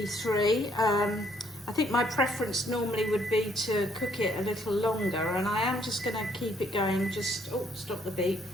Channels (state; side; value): normal; both; correlation 0.67